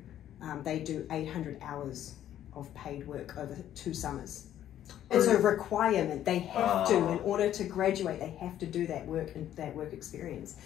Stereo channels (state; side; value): quieter; right; 11.5 dB